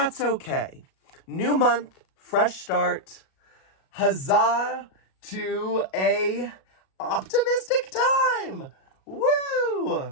okay. New month, fresh start. Huzzah to a optimistic time.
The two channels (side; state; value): right; late; 37 ms